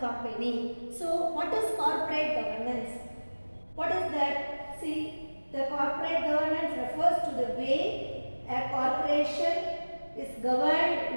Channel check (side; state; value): both; inverted; correlation -1.00